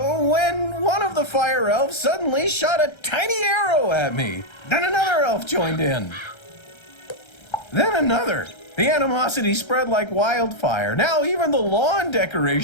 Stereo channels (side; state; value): right; late; 1.3 ms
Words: one of the Fire Elves suddenly shot a tiny arrow at me. Then another elf joined in. Then another. The animosity spread like wildfire. Now even the lawn